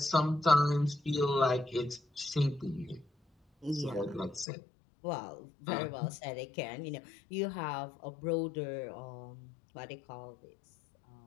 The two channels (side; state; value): right; drops out; at 4.5 s